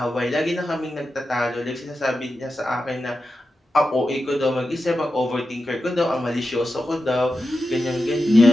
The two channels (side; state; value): both; normal; correlation 0.90